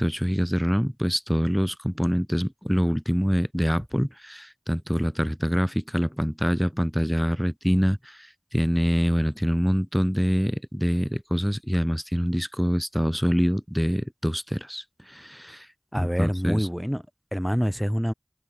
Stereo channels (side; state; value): both; identical; correlation 1.00